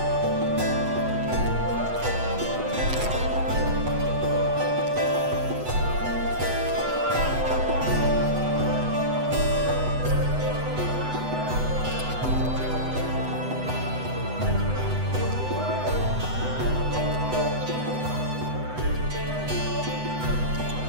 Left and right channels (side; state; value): left; late; 8.0 ms